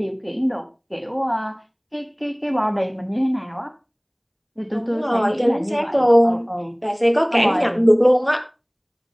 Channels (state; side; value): identical; both; correlation 1.00